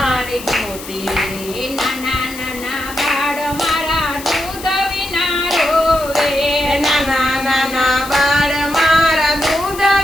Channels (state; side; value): noise; left; hiss, 13 dB below the sound